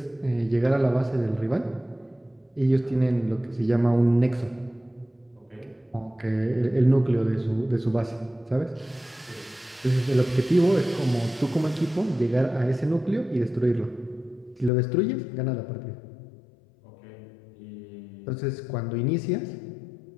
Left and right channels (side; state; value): right; drops out; at 14.7 s